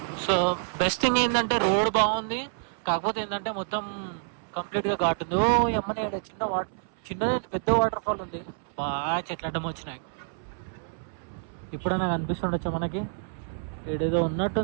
సో బెస్ట్ థింగ్ ఏంటంటే రోడ్ బాగుంది, కాకపోతే ఏంటంటే మొత్తం కంప్లీట్గా ఘాట్ ఉంది. ఎమ్మనే చిన్నది పెద్ద వాటర్ ఫాల్ ఉంది. బాగా చెట్లు అడ్డం వచ్చినాయి. ఇప్పుడైనా కనిపిస్తుండొచ్చా మనకి? ఏడేదో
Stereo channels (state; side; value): silent; left; 59 dB below the other